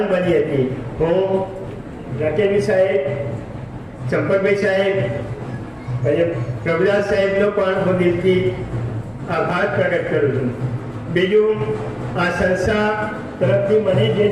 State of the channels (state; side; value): identical; both; correlation 1.00